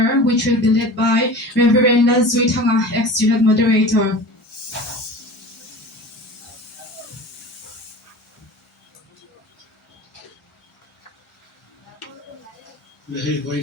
which will be led by Reverend Zuitanga, ex-student moderator. Lehi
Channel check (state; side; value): normal; both; correlation 0.36